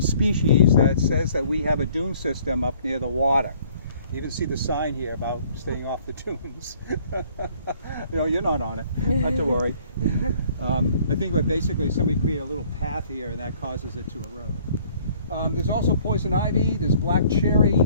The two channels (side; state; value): both; inverted; correlation -0.58